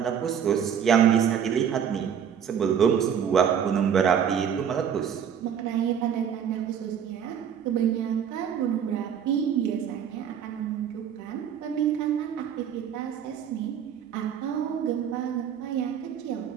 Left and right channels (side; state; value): left; quieter; 8.4 dB